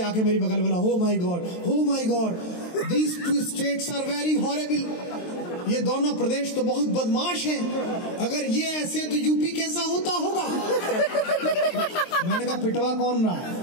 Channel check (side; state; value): right; late; 23 ms